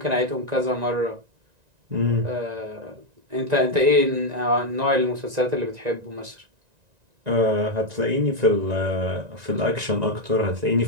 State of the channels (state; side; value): late; left; 1.9 ms